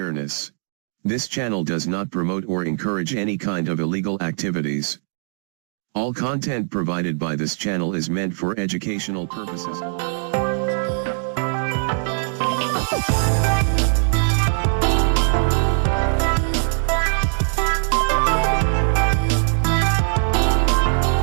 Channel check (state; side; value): silent; left; digital silence